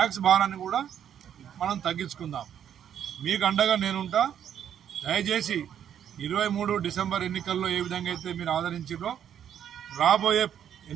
భారాన్ని కూడా మనం తగ్గించుకుందాం. మీకు అండగా నేనుంటా. దయచేసి 23 డిసెంబర్ ఎన్నికల్లో ఏ విధంగా అయితే మీరు ఆదరించారో రాబోయే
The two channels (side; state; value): left; quieter; 9.4 dB